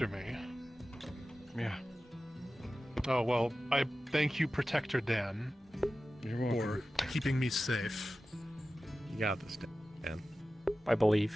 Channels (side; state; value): both; normal; correlation 0.95